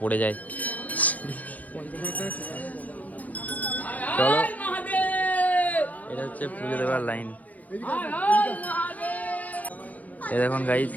পড়ে যায়। চলো, এটা হচ্ছে পুজো দেওয়ার লাইন। এ দেখুন গাইস,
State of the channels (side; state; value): right; late; 0.077 ms